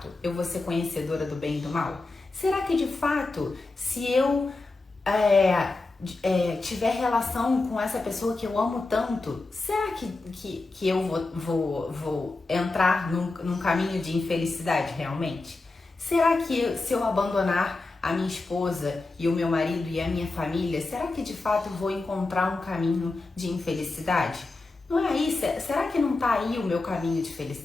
eu vou ser conhecedora do bem e do mal? Será que de fato, se eu tiver relação com essa pessoa que eu amo tanto, será que eu vou entrar num caminho de infelicidade realmente? Será que se eu abandonar a minha esposa e o meu marido e a minha família, será que de fato eu vou encontrar um caminho de infelicidade? Não é aí? Será que não está aí o meu caminho de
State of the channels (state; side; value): quieter; right; 3.4 dB